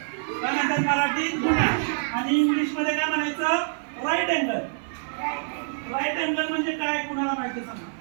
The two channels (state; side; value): silent; left; 56 dB below the other